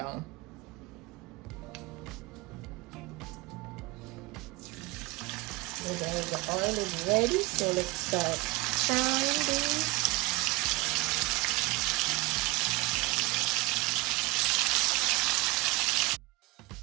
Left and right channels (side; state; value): left; quieter; 23.4 dB